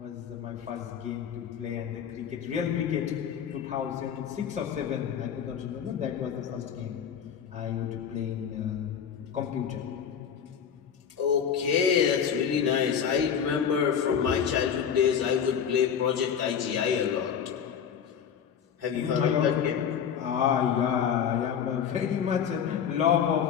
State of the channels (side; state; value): right; quieter; 7.9 dB